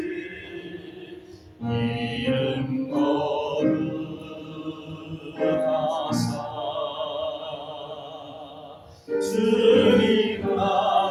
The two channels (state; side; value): identical; both; correlation 1.00